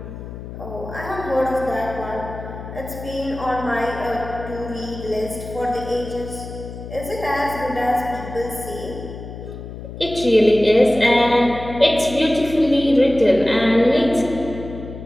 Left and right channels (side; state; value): left; noise; hum, 11 dB below the sound